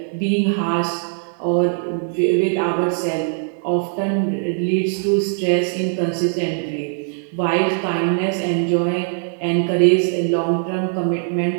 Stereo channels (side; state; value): left; silent; digital silence